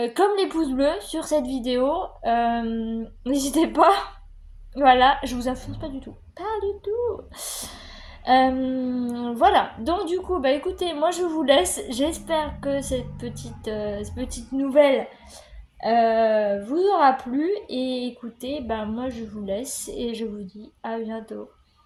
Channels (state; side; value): identical; both; correlation 1.00